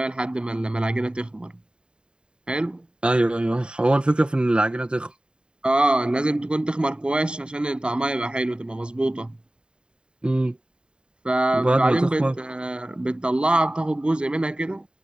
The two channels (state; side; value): late; left; 0.050 ms